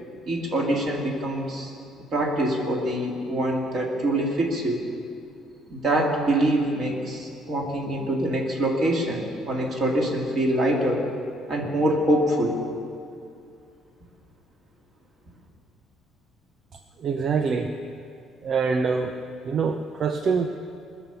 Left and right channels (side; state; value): both; normal; correlation 0.67